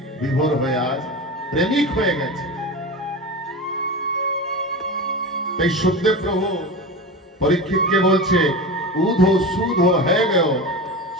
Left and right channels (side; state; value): both; normal; correlation 0.27